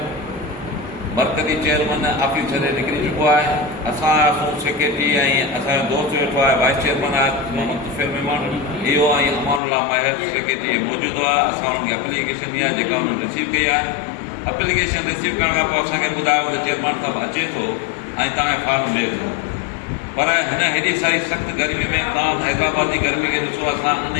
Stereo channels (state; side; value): drops out; right; at 9.6 s